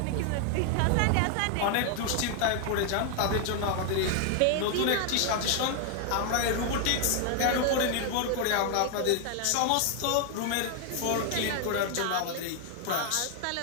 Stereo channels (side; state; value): both; different; correlation 0.00